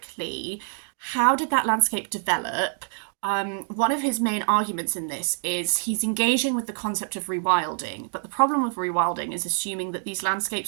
how did that landscape develop? One of his main arguments in this is he's engaging with the concept of rewilding, but the problem with rewilding is assuming that these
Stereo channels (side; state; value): left; silent; digital silence